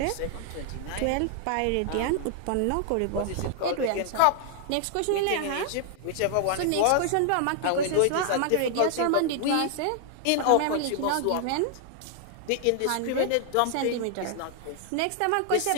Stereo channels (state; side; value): different; both; correlation 0.00